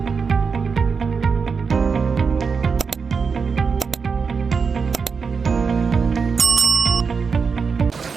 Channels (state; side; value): quieter; left; 5.5 dB